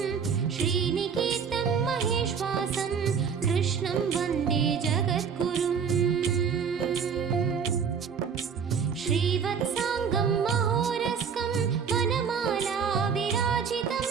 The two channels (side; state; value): left; quieter; 6.5 dB